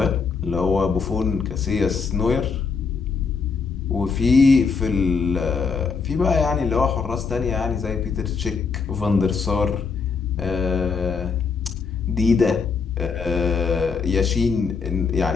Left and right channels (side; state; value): right; quieter; 5.1 dB